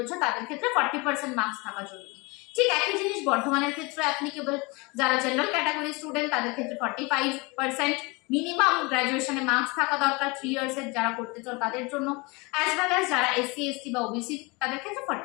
তাদের ক্ষেত্রে 40% মার্কস থাকা জরুরি। ঠিক একই জিনিস বর্ধমানের ক্ষেত্রে অ্যাপ্লিকেবল। যারা জেনারেল ক্যাটাগরি স্টুডেন্ট তাদের ক্ষেত্রে 45% মিনিমাম গ্র্যাজুয়েশনে মার্কস থাকা দরকার 3 ইয়ার্সের যারা করতে চাও তাদের জন্য, অ্যাজ ওয়েল অ্যাজ যারা এসসি এসটি বা ওবিসি তাদের ক্ষেত্রে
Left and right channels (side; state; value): right; quieter; 26.7 dB